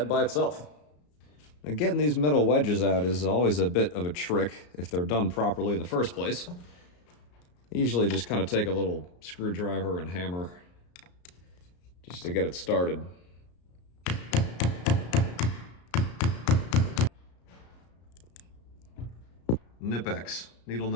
by itself. Now, getting these metal wedges out is always a bit of a trick if they're done properly in the first place. I usually just kind of take a little screwdriver and hammer just to get it started. Nipex, needle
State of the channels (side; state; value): right; late; 34 ms